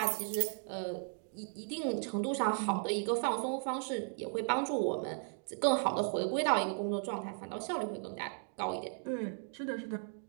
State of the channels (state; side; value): silent; left; 54 dB below the other